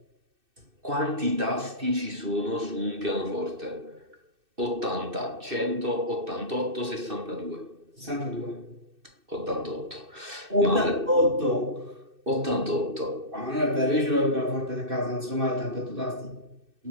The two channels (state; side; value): late; left; 2.6 ms